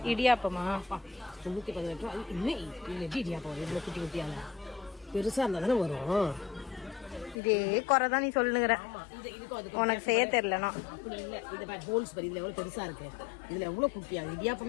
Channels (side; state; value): right; drops out; at 7.4 s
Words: இடியாப்பமா 118 ரூபா. இன்னும் இடியாப்பம் எவ்வளவு குட்டி குட்டியால பெருசா இருந்தா தானே வரும். இதே குறைதான் நீ சொல்லுங்கிற. உனக்கு செய்ய தெரியலனா அப்படி இல்ல. இது ஹோல்ஸ் பாரு, இதுல எவ்வளவு பெருசா இருக்கு. இதுல எவ்வளவு குட்டியா